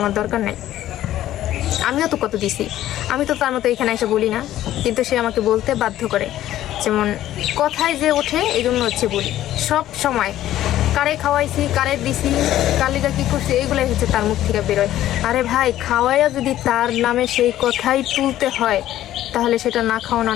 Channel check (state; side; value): quieter; right; 13.3 dB